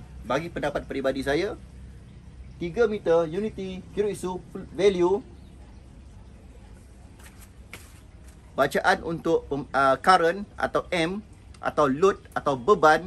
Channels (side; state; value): both; identical; correlation 1.00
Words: bagi pendapat peribadi saya, 3 meter unity Kyoritsu value bacaan untuk current atau M atau load atau beban